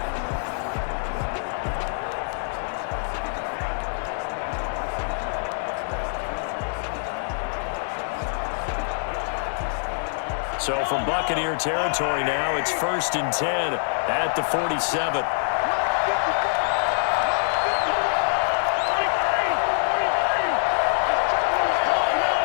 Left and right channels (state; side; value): silent; right; digital silence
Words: So from Buccaneer territory now, it's 1st and 10 at the 47.